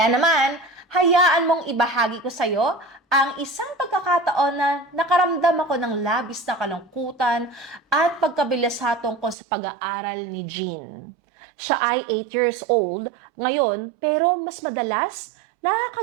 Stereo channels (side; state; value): left; drops out; at 9.3 s